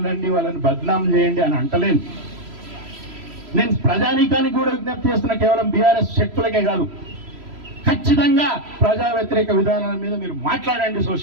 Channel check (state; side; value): late; left; 3.0 ms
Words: వాళ్ళని బద్నాం చేయండి అని అంటలేను. నేను ప్రజానీకానికి కూడా విజ్ఞప్తి చేస్తున్నా, కేవలం బీఆర్ఎస్ శక్తులకే కాదు. ఖచ్చితంగా ప్రజా వ్యతిరేక విధానాల మీద మీరు మాట్లాడండి.